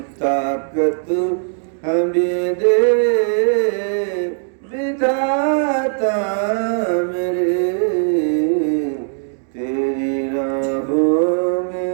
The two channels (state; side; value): silent; left; digital silence